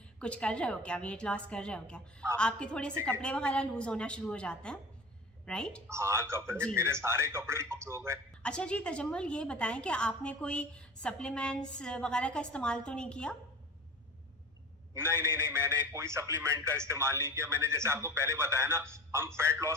कुछ कर रहे हो क्या, वेट लॉस कर रहे हो क्या, आपके थोड़े से कपड़े वगैरह लूज होना शुरू हो जाते हैं, राइट? हाँ, कपड़े, मेरे सारे कपड़े लूज हो गए। अच्छा जी तजम्मुल, ये बताएं कि आपने कोई सप्लीमेंट्स वगैरह का इस्तेमाल तो नहीं किया? नहीं, मैंने कोई सप्लीमेंट का इस्तेमाल नहीं किया। मैंने जैसे आपको पहले बताया ना, हम फैट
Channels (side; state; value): both; normal; correlation 0.37